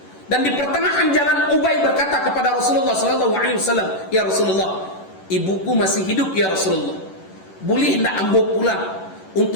Dan di pertengahan jalan Ubay berkata kepada Rasulullah SAW, "Ya Rasulullah, ibuku masih hidup ya Rasulullah. Boleh tidak ambo pulang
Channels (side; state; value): right; late; 11 ms